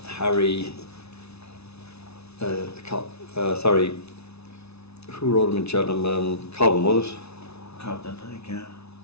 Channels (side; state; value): right; late; 0.80 ms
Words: Harry, sorry, who rode him in Cheltenham? Cobden, was it? Cobden, I think, yeah.